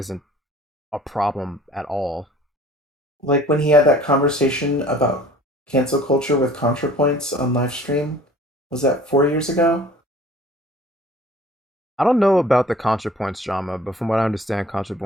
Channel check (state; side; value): normal; both; correlation 0.49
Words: a problem at all. Like when he had that conversation about cancel culture with ContraPoints on live stream, was that 4 years ago? I don't know about the ContraPoints drama, but from what I understand,